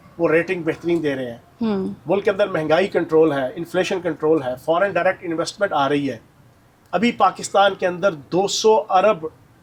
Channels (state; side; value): identical; both; correlation 1.00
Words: وہ ریٹنگ بہترین دے رہے ہیں. ملک کے اندر مہنگائی کنٹرول ہے، انفلیشن کنٹرول ہے، فارن ڈائریکٹ انویسٹمنٹ آ رہی ہے. ابھی پاکستان کے اندر